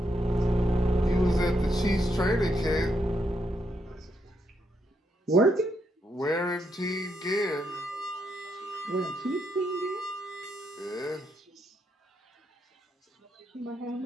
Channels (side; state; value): both; normal; correlation 0.79